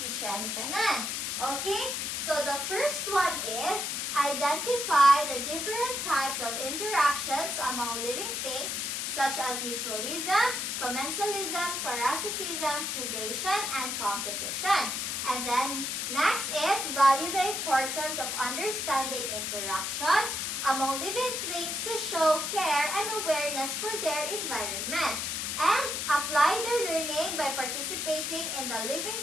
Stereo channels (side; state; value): left; noise; hiss, 2 dB below the sound